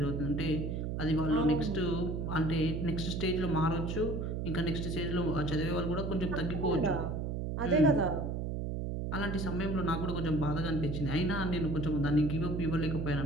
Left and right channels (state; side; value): noise; right; hum, 2 dB below the sound